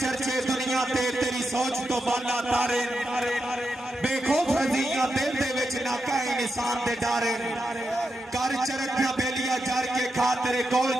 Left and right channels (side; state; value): both; normal; correlation 0.86